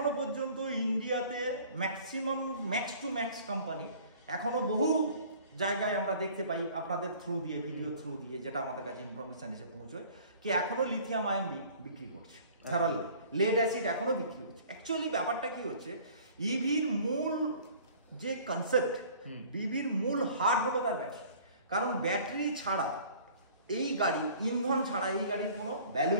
পর্যন্ত ইন্ডিয়াতে maximum max to max company এখনো বহু জায়গায় আমরা দেখতে পাই আপনাদের থ্রু দিয়ে, ভিডিও থ্রু দিয়ে, যেটা আমাদের কাছে ইনফরমেশন এসে পৌঁছয়, কি এখনো লিথিয়াম আয়ন বিক্রি করছে, লেড অ্যাসিড এখনো বিক্রি করছে। অ্যাকচুয়ালি ব্যাপারটা কি হচ্ছে, ইভির মূল যে কনসেপ্ট, ইভির মূল হার্ট হলো তার ব্যাটারি। কারণ ব্যাটারি ছাড়া এই গাড়ি, ইন্ধন ছাড়া এই গাড়ির কোনো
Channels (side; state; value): both; inverted; correlation -0.50